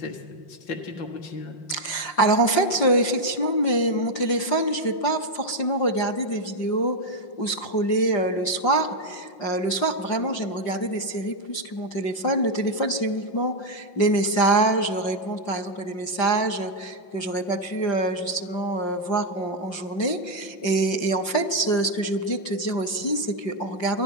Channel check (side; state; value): right; late; 5.7 ms